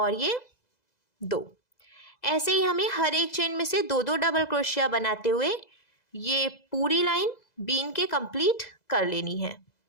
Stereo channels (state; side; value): late; right; 2.0 ms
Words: ये 2। ऐसे ही हमें हर एक चेन में से 2 डबल क्रोशिया बनाते हुए ये पूरी लाइन बीन के कंप्लीट कर लेनी है।